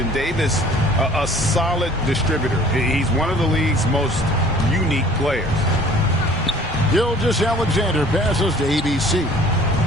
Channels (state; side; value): normal; both; correlation 0.51